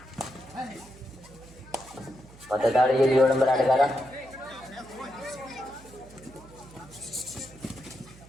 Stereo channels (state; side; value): noise; right; hum, 21 dB below the sound